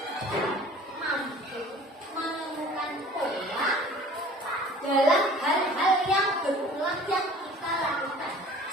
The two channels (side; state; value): both; normal; correlation 0.47